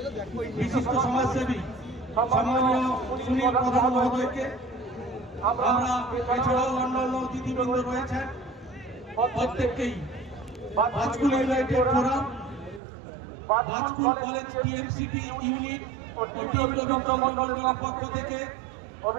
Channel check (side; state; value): left; drops out; at 12.8 s